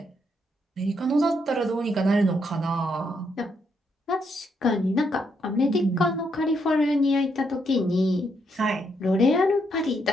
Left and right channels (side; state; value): both; normal; correlation 0.76